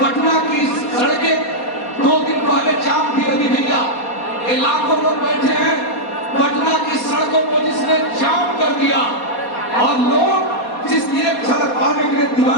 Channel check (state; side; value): late; right; 4.2 ms